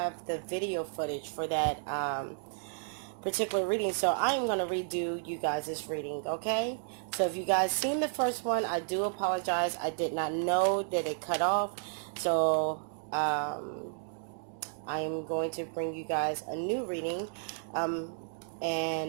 the video footage for that particular reading, so I am going to redo you guys' reading, okay? So if you guys seen the first one, I do apologize. I did not know that it cut off, so I am going to bring you guys a new reading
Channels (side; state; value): left; silent; digital silence